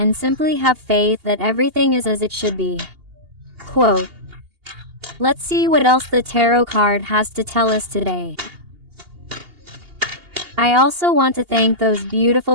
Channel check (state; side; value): late; left; 2.8 ms